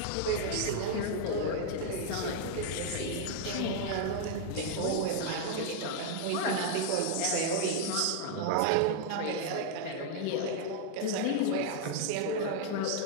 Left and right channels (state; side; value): different; both; correlation 0.00